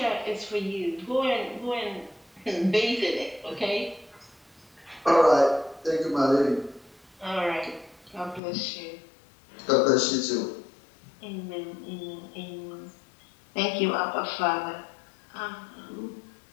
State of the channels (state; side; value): drops out; right; at 8.4 s